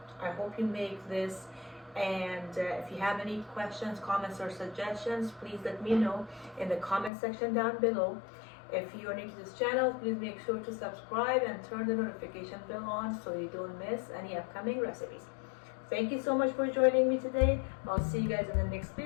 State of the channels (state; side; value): drops out; right; at 7.1 s